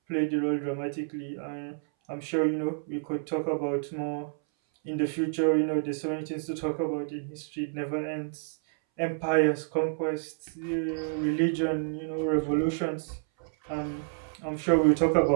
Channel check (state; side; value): silent; left; 58 dB below the other